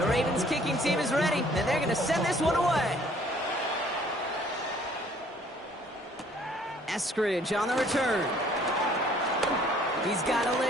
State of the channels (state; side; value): normal; both; correlation 0.59